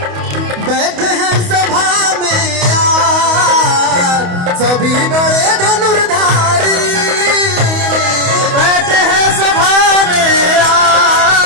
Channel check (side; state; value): left; late; 28 ms